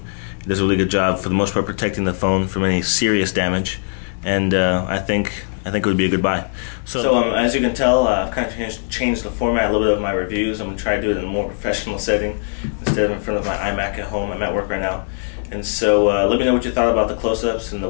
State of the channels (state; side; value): silent; right; digital silence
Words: It does a really good job for the most part protecting the phone from any serious damage, and I think it would be a good buy. So as you can tell, I've kind of changed the format a little bit of my reviews. I'm going to try to do it in a more professional setting instead of in front of my iMac at home. I'm at work right now. And so let me know what you thought about the close-ups and the